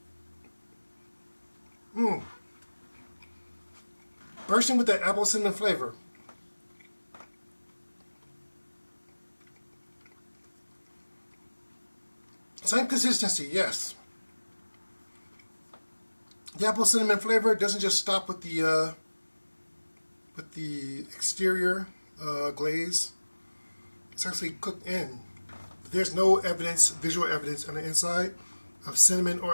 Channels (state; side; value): inverted; both; correlation -1.00